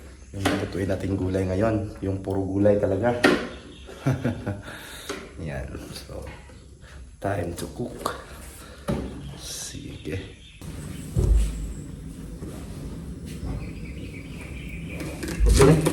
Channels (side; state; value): both; identical; correlation 1.00